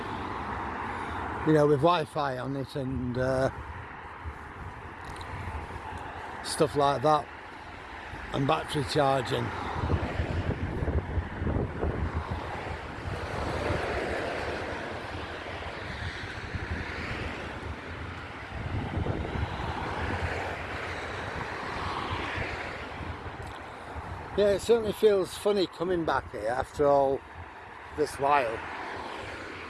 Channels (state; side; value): identical; both; correlation 1.00